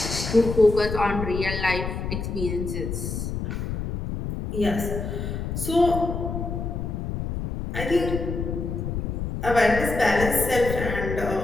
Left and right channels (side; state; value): left; noise; rumble, 4 dB below the sound